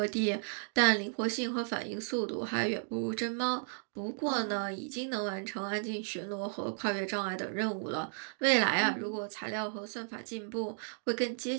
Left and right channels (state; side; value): silent; left; digital silence